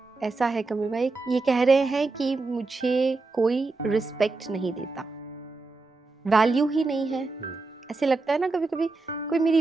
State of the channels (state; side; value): quieter; left; 3.6 dB